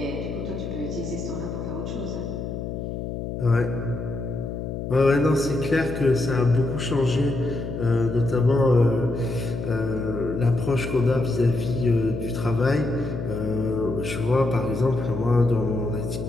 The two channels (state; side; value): noise; left; hum, 5 dB below the sound